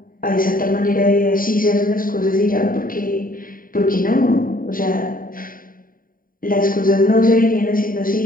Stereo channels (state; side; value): late; right; 0.41 ms